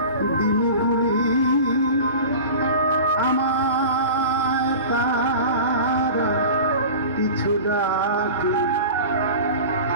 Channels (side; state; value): both; inverted; correlation -0.35